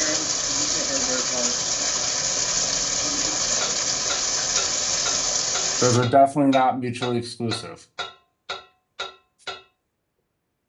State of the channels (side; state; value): both; identical; correlation 1.00